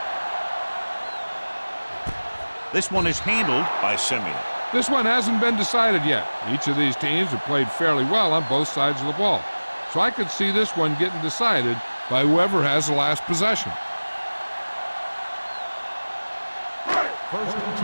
This one is handled by Simeon. This one hasn't been decided yet. Each of these teams have played fairly well on both sides of the ball. So I could see this one getting decided by whoever has the last possession. 1st and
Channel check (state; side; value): inverted; both; correlation -1.00